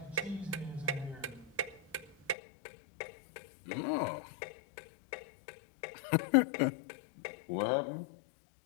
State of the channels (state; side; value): drops out; right; at 2.4 s